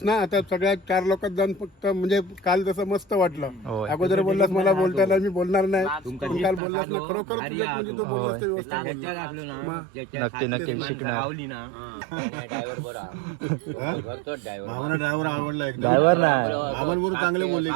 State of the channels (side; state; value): left; drops out; at 6.6 s